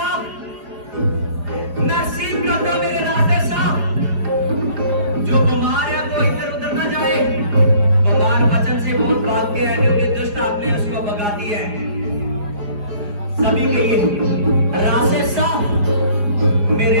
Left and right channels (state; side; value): late; left; 4.9 ms